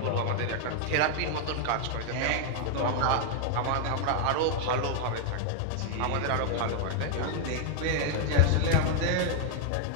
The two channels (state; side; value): different; both; correlation 0.00